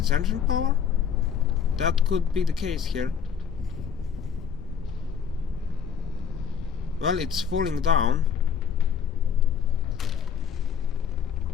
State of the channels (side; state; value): right; quieter; 7.3 dB